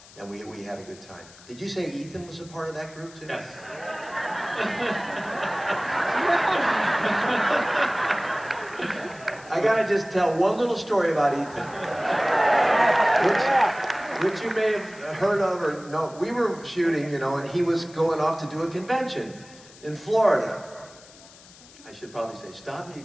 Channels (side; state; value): left; noise; hiss, 22 dB below the sound